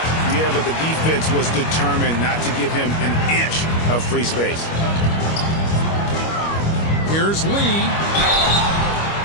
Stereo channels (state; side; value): late; right; 25 ms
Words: Yeah, but the defense was determined not to give him an inch of free space. Here's Lee.